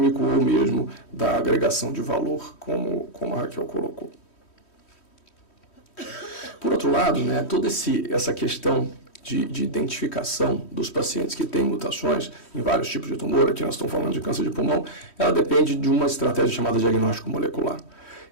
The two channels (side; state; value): right; late; 3.1 ms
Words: ou mesmo da agregação de valor, como a Raquel colocou. Por outro lado, né, toda essa questão de identificação dos pacientes que têm mutações em vários tipos de tumor, aqui nós estamos falando de câncer de pulmão, ela depende de uma estratégia chamada diagnóstico molecular.